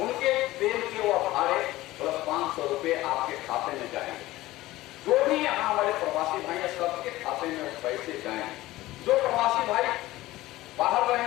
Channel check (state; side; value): quieter; right; 17.3 dB